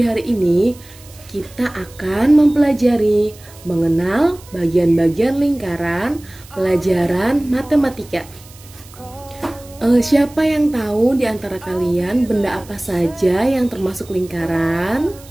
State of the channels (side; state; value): right; noise; hiss, 22 dB below the sound